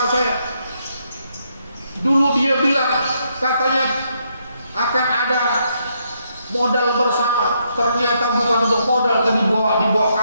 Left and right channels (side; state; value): both; inverted; correlation -0.76